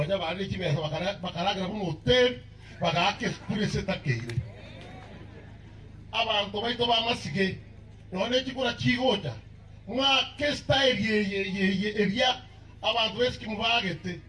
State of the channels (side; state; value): both; identical; correlation 1.00